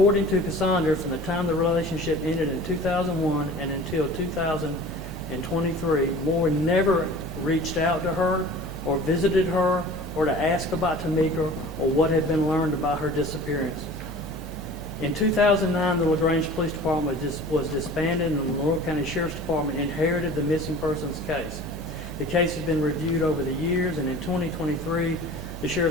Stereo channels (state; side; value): noise; right; hum, 11 dB below the sound